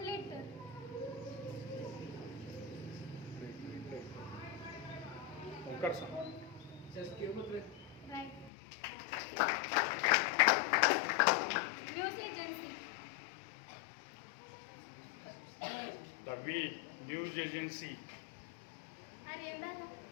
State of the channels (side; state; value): right; drops out; at 8.5 s